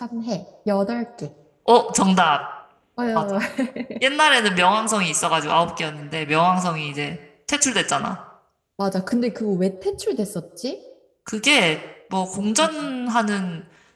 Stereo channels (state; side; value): identical; both; correlation 1.00